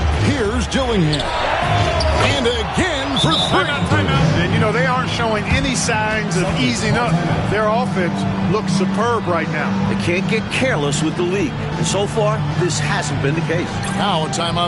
Here's Dillingham. And again for 3. And, you know, they aren't showing any signs of easing up. Their offense looks superb right now. They can't get careless with the league. And so far, this hasn't been the case. Now a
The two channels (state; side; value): identical; both; correlation 1.00